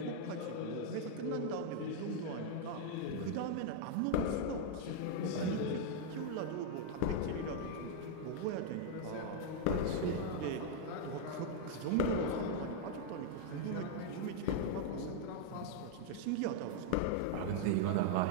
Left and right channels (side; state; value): both; different; correlation -0.01